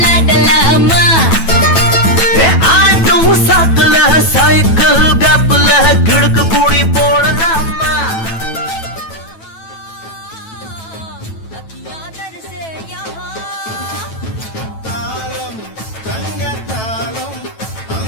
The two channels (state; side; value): late; right; 9.1 ms